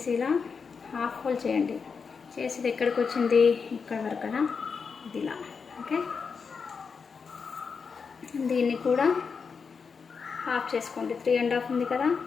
ఇలా హాఫ్ హోల్ చేయండి. చేసి ఇది ఎక్కడికి వచ్చింది, ఇక్కడ వరకు కదా, ఇది ఇలా. ఓకే, దీన్ని కూడా హాఫ్ చేసుకోండి. 3.5 ఉంది కదా,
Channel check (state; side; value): quieter; right; 5.6 dB